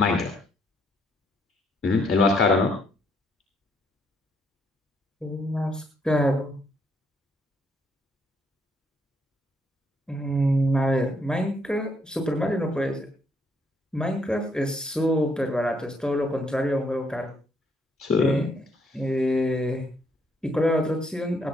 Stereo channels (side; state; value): both; normal; correlation 0.71